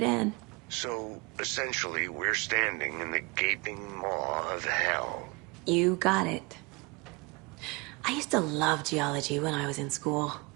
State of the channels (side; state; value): left; quieter; 28.1 dB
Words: in. So, essentially, we're standing in the gaping maw of hell. You got it. I used to love geology when I was in school.